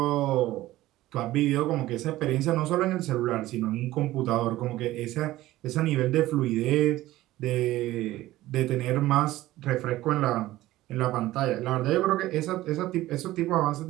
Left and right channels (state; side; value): quieter; left; 16.2 dB